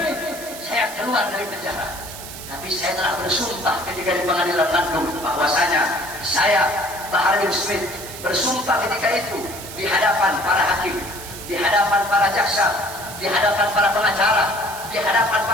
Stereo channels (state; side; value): noise; right; hiss, 12 dB below the sound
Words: saya keluar dari penjara, tapi saya telah bersumpah ketika di pengadilan Bandung bahwasanya saya Bahar bin Smith bersumpah ketika itu di hadapan para hakim, di hadapan para jaksa, di hadapan para pengacara, di hadapan